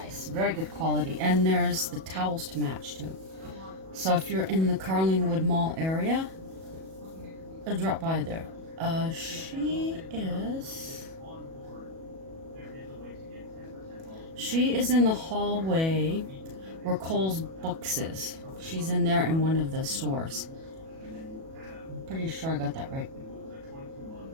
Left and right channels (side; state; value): left; late; 37 ms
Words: Very good quality. And there's the towels to match too. So if you're in the Carlingwood Mall area, drop by there. She is in the hallway where Cole's Books is. She's in there in one of the stores. I'm pretty sure I got that right.